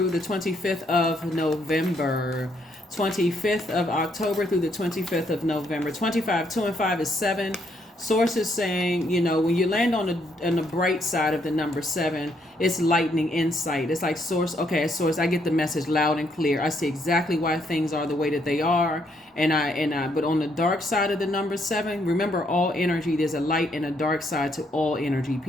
the 25th of November. 25th of October through the 25th of November. 25, 2 and 5 is 7. Source is saying, when you land on the bright side of the number 7, it's lightning insight. It's like source, I get the message loud and clear. I see exactly why things are the way that they are. But on the dark side of the number 7, remember all energy, there's a light and a dark side to all energy,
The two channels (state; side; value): normal; both; correlation 0.72